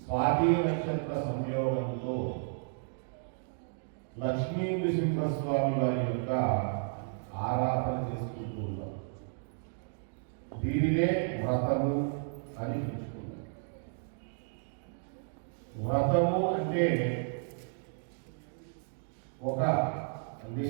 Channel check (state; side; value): silent; left; digital silence